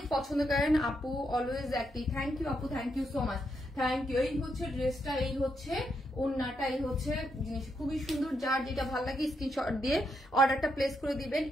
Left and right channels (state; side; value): normal; both; correlation 0.80